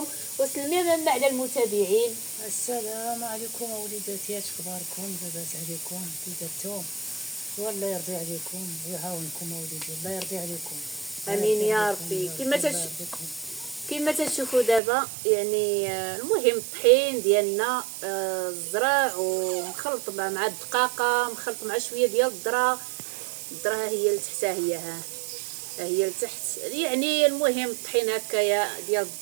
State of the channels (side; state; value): left; drops out; at 14.8 s